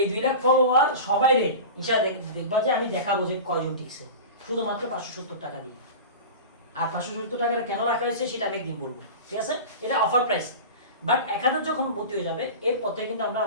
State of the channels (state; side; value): inverted; both; correlation -0.31